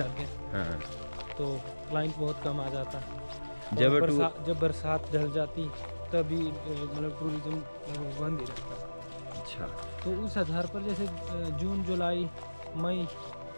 हैं, हाँ तो क्लाइंट बहुत कम आ जाता है। जब बरसात ढल जाती तभी मतलब टूरिज्म लगभग बंद ही रहता है। अच्छा तो उस आधार पर जैसे जून जुलाई मई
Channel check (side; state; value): both; inverted; correlation -1.00